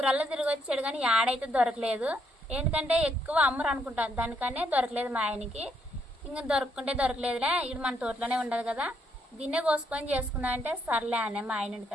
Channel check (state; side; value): normal; both; correlation 0.74